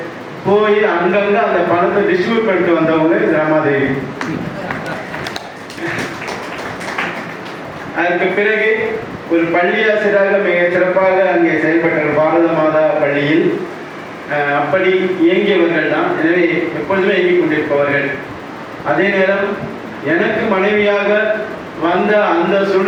போய் அங்கங்க அந்த பணத்தை டிஸ்ட்ரிபியூட் பண்ணிட்டு வந்தவங்க ரமாதேவி. அதற்கு பிறகு ஒரு பள்ளி ஆசிரியராக மிக சிறப்பாக அங்கே செயல்பட்டார் பாரத மாதா பள்ளியில். அப்படி இயங்கியவர்கள் தான். எனவே எப்பொழுதுமே இயங்கிக் கொண்டிருப்பவர்கள். அதே நேரம் எனக்கு மனைவியாக வந்த அந்த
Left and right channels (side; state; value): both; identical; correlation 1.00